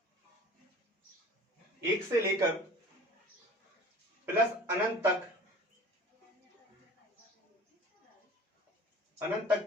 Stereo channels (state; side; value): normal; both; correlation 0.44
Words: लेकर प्लस अनंत